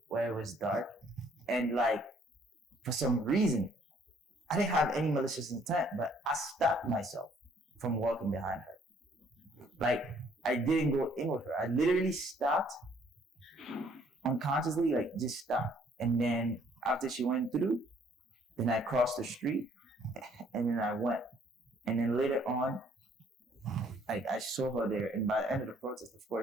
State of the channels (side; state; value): both; normal; correlation 0.62